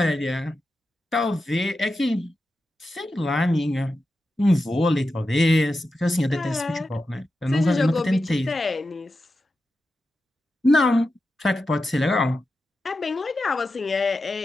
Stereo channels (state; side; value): normal; both; correlation 0.90